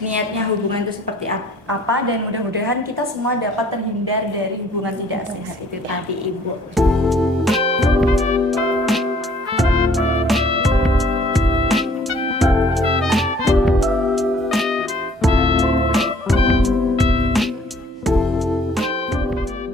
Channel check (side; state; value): both; normal; correlation 0.58